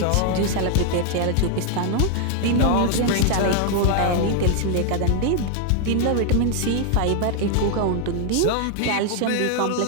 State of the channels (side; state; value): both; different; correlation 0.00